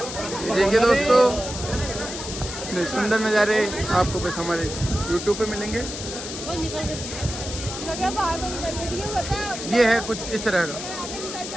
देखिए दोस्तों, ये सुंदर नज़ारे आपको बस हमारे YouTube पे मिलेंगे। ये है कुछ इस तरह का,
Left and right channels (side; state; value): left; noise; hiss, 8 dB below the sound